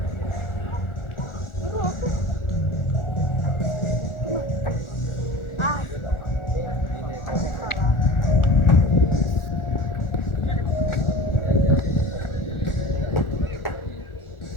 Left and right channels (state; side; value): late; right; 1.4 ms